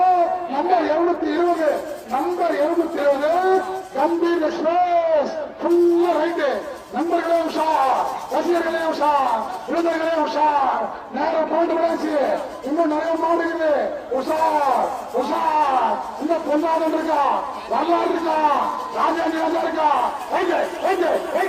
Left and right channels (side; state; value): both; identical; correlation 1.00